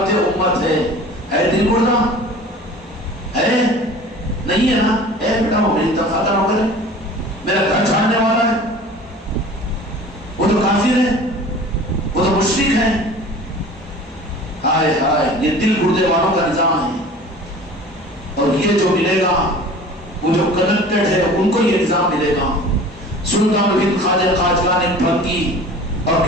امت ہے. اے دل مردہ ہے نہیں ہے نا, اے بیٹا وہ میری تنخواہ کا نوکر ہے, میرا گھر چھاڑنے والا ہے, وہ تو کافر ہے, وہ تو مشرک ہے. ہائے ہائے, یہ دل گردے والوں کا نظام ہے. اور یہ جو ملے گا وہ جو کنیکٹڈ ہے ان کو یہ نظام ملے گا. سلطان الہند خواجہ قاجلان نے پھنکی اور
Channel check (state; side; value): normal; both; correlation 0.42